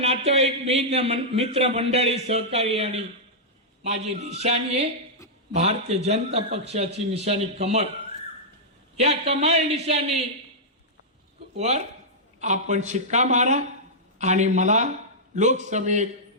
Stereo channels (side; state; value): both; normal; correlation -0.10